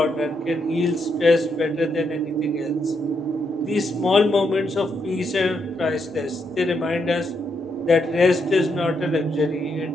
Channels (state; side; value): normal; both; correlation 0.79